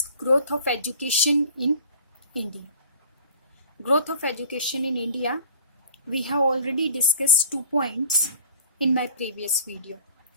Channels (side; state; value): both; inverted; correlation -0.48